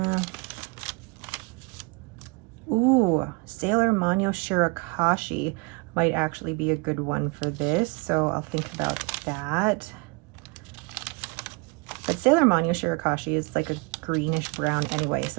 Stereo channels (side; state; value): left; quieter; 30.4 dB